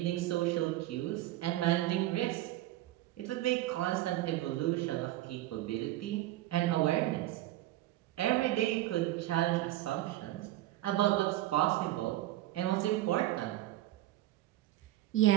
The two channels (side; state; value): left; quieter; 15.4 dB